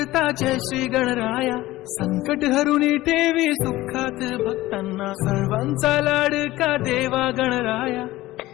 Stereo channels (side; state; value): right; quieter; 17.3 dB